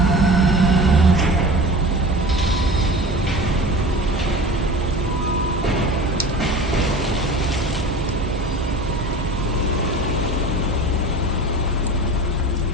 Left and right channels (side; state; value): both; normal; correlation 0.36